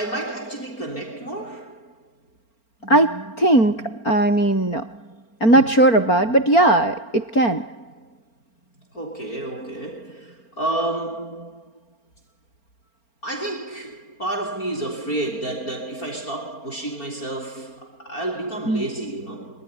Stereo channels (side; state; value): right; late; 4.4 ms